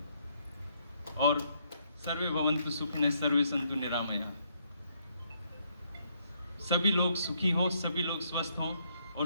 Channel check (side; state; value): both; inverted; correlation -0.72